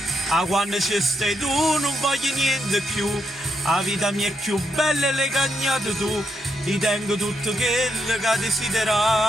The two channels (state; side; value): normal; both; correlation 0.80